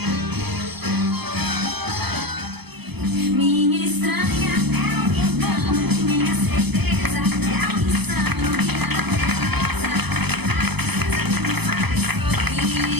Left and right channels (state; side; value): late; left; 0.98 ms